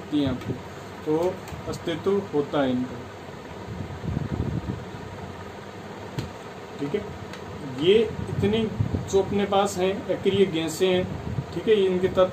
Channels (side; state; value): both; identical; correlation 1.00